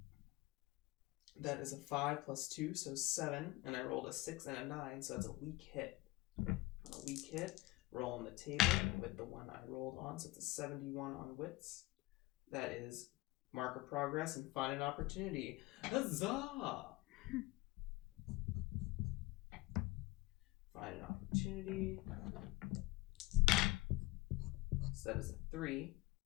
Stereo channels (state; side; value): quieter; right; 20.2 dB